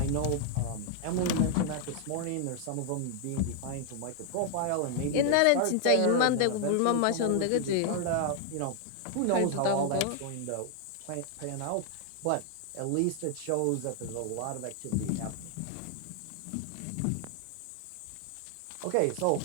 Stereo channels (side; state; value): both; different; correlation 0.00